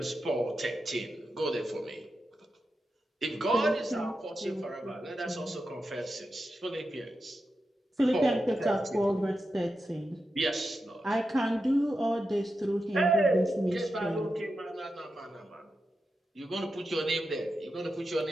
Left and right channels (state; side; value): normal; both; correlation 0.89